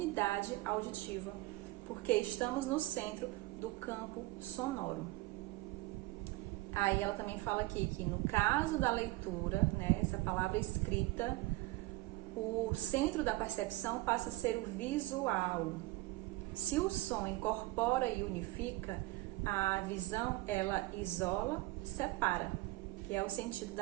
auditiva, porque estamos no centro do campo sonoro. Aí ela também fala aqui que no caso da leitura, né, essa palavra escrita, o centro da percepção passa a ser o visual. Se o som incorpora e unifica, a visão ela isola, separa, que é o sentido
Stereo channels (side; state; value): left; quieter; 20.0 dB